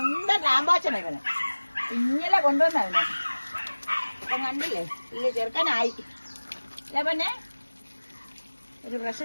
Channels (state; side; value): inverted; both; correlation -1.00